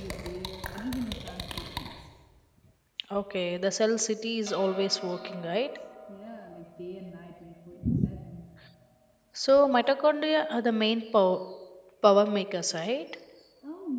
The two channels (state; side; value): identical; both; correlation 1.00